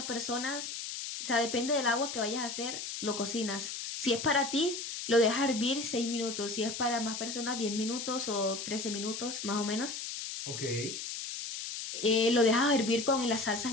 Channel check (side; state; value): left; noise; hiss, 6 dB below the sound